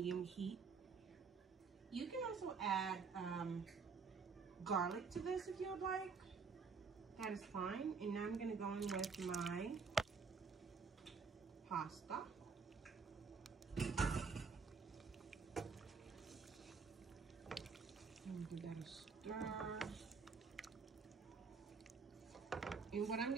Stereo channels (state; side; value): quieter; left; 5.1 dB